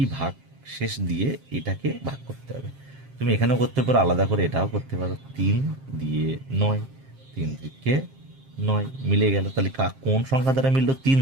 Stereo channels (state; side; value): late; left; 7.5 ms